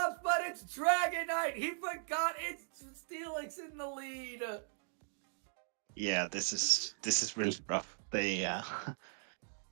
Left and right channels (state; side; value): silent; left; digital silence